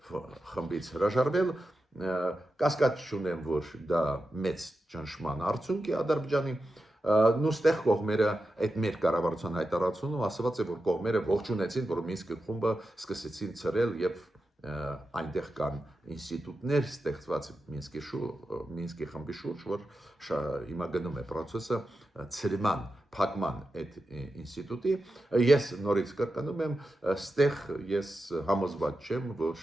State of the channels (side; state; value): both; normal; correlation 0.90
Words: խմբից հրաժարվել, կասկած չունեմ, որ դա մեծ ճնշման արդյունք է Ադրբեջանի, նույնստեղ կողմերը այդ մեր կառավարության հայտարարությունում ասված է, որ կողմերը ողջունեցին, որ Մինսկի խումբը սկսեցին ծրել եւ այնտեղ կան ինստիտուտներ ստեղծված Մինսկի խմբի շուրջ, որ հիմա գնում է process-ը ծրման, փակման այդ ինստիտուտի, ես նորից կրկնում եմ, ստեղ ես համոզված չեմ,